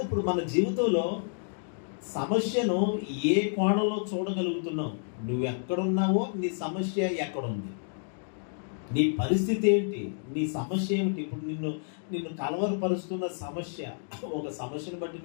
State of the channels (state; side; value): silent; right; digital silence